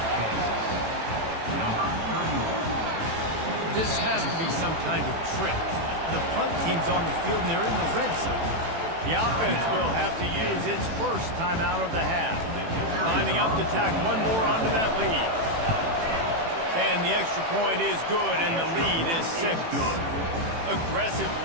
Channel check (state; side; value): late; left; 18 ms